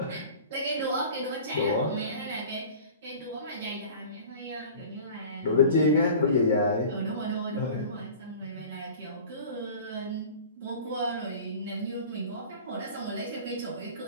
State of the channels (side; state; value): both; inverted; correlation -0.40